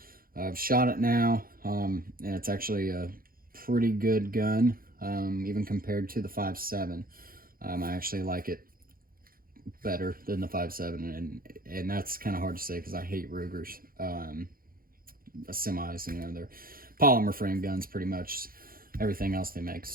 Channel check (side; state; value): left; late; 0.42 ms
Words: I've shot it now, and it's actually a pretty good gun, even compared to the 5.7. I actually like it better than the 5.7, and that's kind of hard to say because I hate Rugers. Semis, you know, they're polymer frame guns pretty much. Everything else they